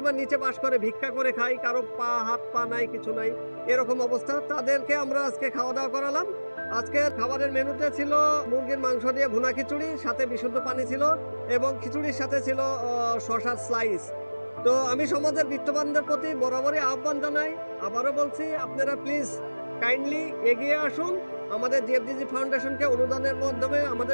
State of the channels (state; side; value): inverted; both; correlation -1.00